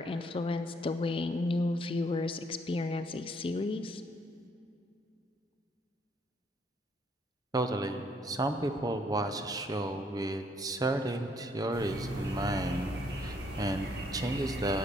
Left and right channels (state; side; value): normal; both; correlation 0.68